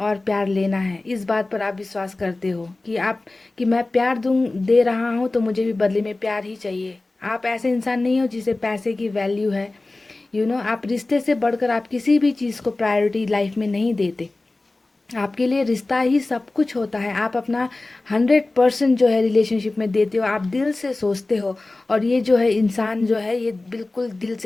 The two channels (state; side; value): quieter; right; 3.1 dB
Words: प्यार लेना है, इस बात पर आप विश्वास करते हो कि मैं प्यार दे रहा हूँ तो मुझे भी बदले में प्यार ही चाहिए। आप ऐसे इंसान नहीं हो जिसे पैसे की वैल्यू है। आप रिश्ते से बढ़कर आप किसी भी चीज़ को प्रायोरिटी लाइफ में नहीं देते। आपके लिए रिश्ता ही सब कुछ होता है। आप अपना 100% जो है रिलेशनशिप में देते हो, आप दिल से सोचते हो। और ये जो है इंसान जो है ये बिल्कुल दिल